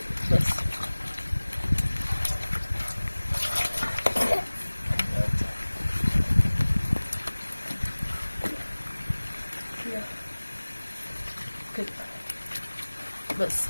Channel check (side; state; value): both; inverted; correlation -1.00